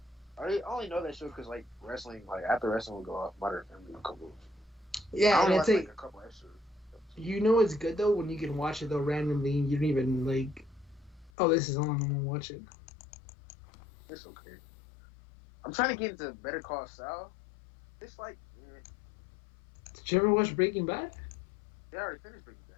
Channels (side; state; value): right; drops out; at 11.3 s